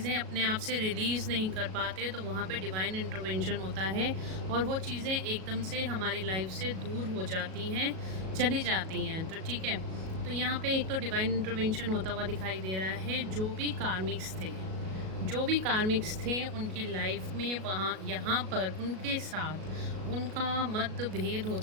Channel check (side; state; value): left; late; 37 ms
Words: अपने आप से रिलीज़ नहीं कर पाते, तो वहाँ पे डिवाइन इंटरवेंशन होता है और वो चीज़ें एकदम से हमारी लाइफ से दूर हो जाती हैं, चली जाती हैं। तो ठीक है, तो यहाँ पे एक तो डिवाइन इंटरवेंशन होता हुआ दिखाई दे रहा है। जो भी कार्मिक्स थे उनकी लाइफ में वहाँ यहाँ पर उनके साथ उनका मतभेद